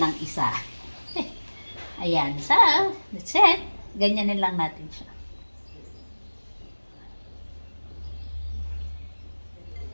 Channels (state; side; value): inverted; both; correlation -1.00